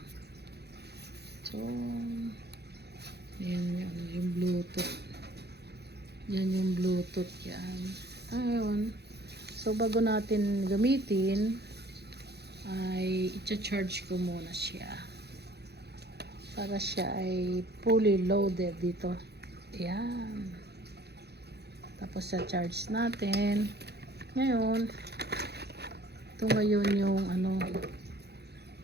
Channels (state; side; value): late; left; 0.48 ms